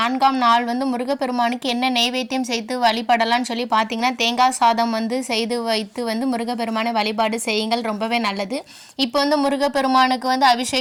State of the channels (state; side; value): identical; both; correlation 1.00